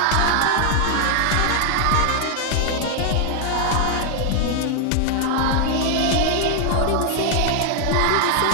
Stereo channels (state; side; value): different; both; correlation 0.00